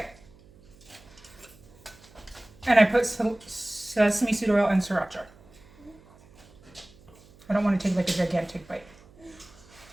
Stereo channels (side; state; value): right; noise; hum, 25 dB below the sound